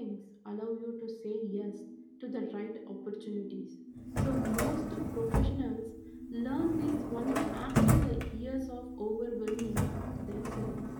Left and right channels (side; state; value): both; identical; correlation 1.00